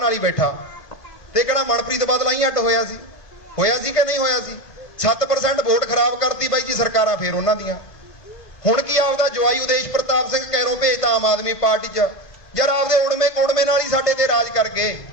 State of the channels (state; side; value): late; right; 2.0 ms